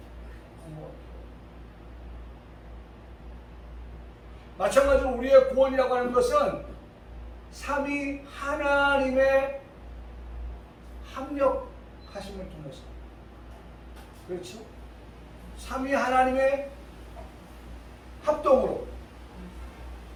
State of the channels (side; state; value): both; identical; correlation 1.00